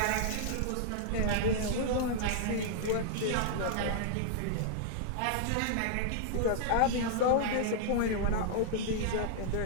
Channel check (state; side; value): different; both; correlation -0.01